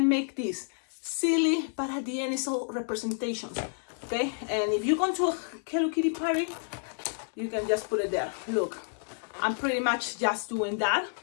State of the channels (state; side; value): silent; right; 57 dB below the other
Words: make this silly, but at the end it's all representations. Okay, and if you go to a Hello Kitty party, you can just put it there. Look, I'm pretty much just doing that.